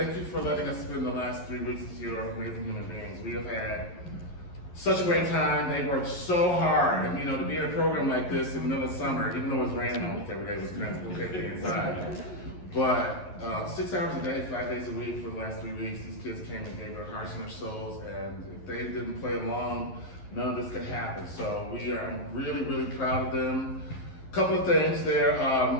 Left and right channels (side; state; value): right; late; 11 ms